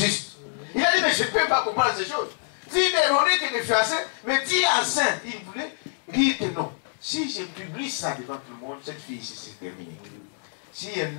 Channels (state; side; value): silent; right; digital silence